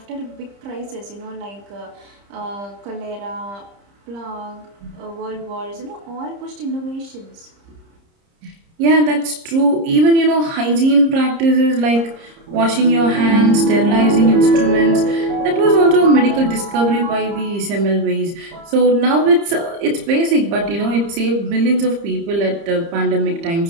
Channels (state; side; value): late; left; 30 ms